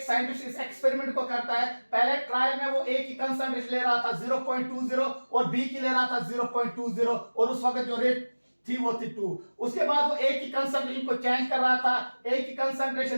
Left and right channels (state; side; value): inverted; both; correlation -1.00